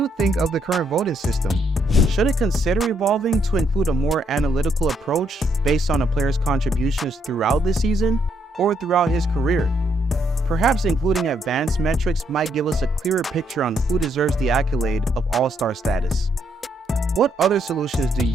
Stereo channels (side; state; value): both; normal; correlation 0.73